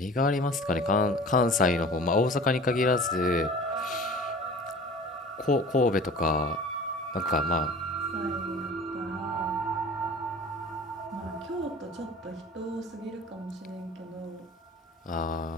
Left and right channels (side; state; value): both; normal; correlation 0.42